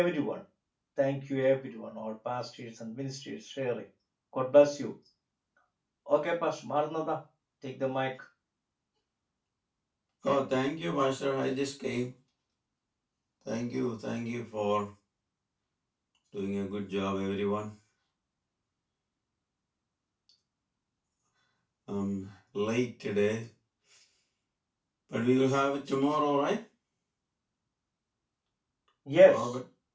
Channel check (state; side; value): identical; both; correlation 1.00